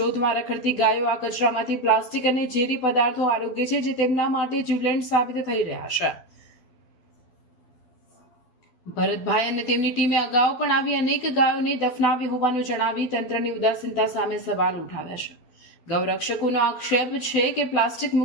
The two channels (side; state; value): right; late; 12 ms